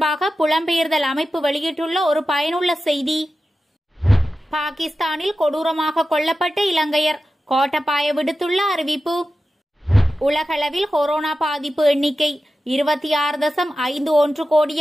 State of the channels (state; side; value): normal; both; correlation 0.93